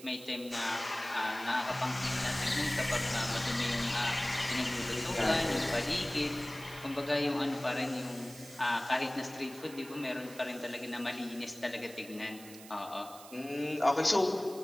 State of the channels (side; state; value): right; noise; hiss, 17 dB below the sound